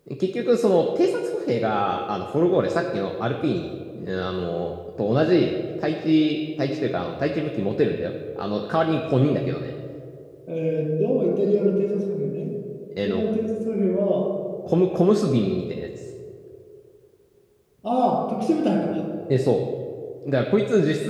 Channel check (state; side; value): identical; both; correlation 1.00